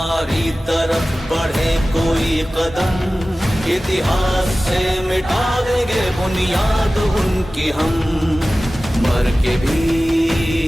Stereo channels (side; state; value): both; normal; correlation 0.96